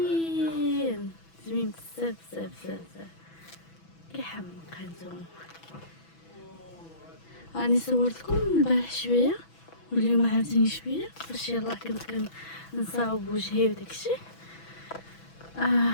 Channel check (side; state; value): right; late; 6.1 ms